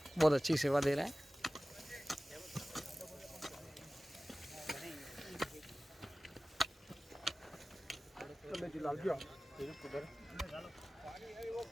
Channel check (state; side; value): normal; both; correlation 0.97